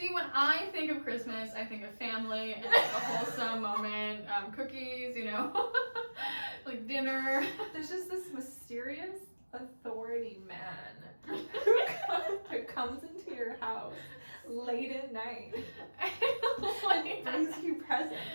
when I think of Christmas, I think of family and like a wholesome moment, cookies, like dinner. There's just this mysterious authority man who comes into your house late at night and brings you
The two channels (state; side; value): inverted; both; correlation -1.00